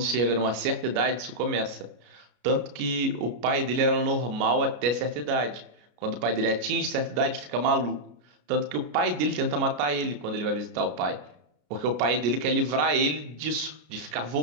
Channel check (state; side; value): late; left; 33 ms